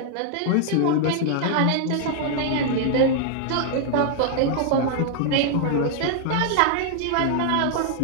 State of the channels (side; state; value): both; different; correlation 0.00